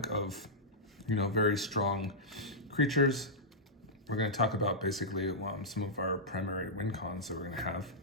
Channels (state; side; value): normal; both; correlation -0.11